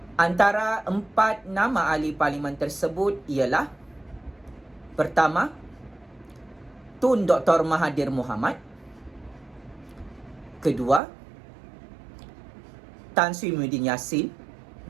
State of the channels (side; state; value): left; drops out; at 11.0 s